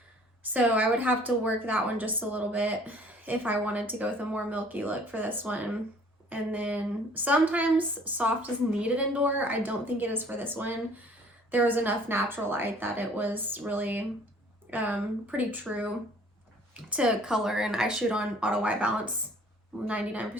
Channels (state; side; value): normal; both; correlation 0.54